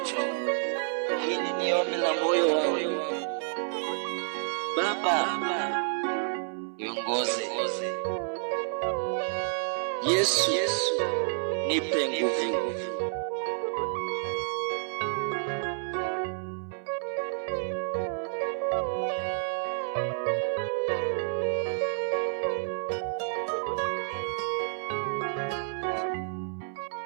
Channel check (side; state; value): left; silent; 58 dB below the other